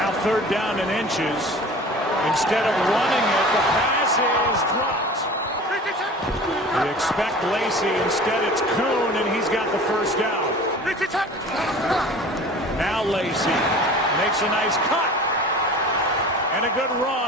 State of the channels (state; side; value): normal; both; correlation 0.41